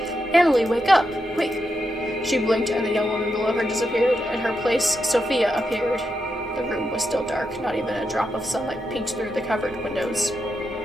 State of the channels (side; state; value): both; normal; correlation 0.85